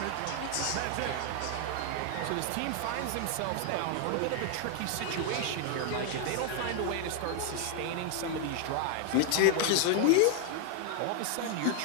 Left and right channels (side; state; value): both; different; correlation 0.00